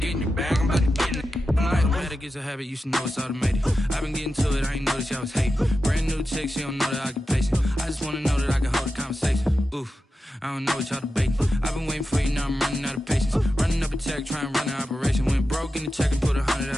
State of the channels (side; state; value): both; normal; correlation 0.91